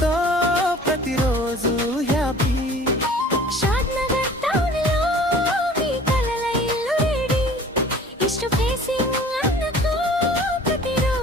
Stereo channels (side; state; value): both; normal; correlation 0.47